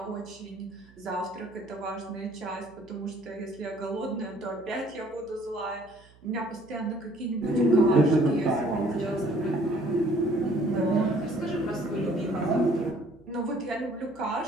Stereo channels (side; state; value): right; noise; hum, 26 dB below the sound